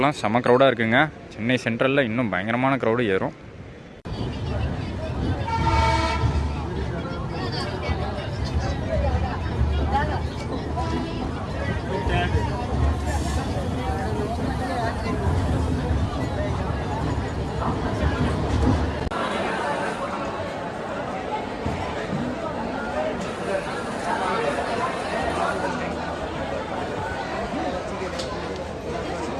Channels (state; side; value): identical; both; correlation 1.00